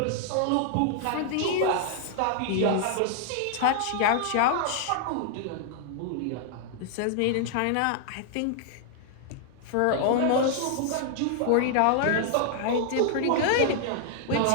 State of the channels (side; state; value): both; different; correlation -0.01